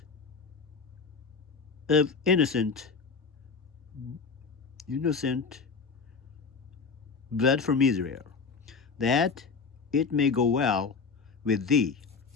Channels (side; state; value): right; quieter; 5.1 dB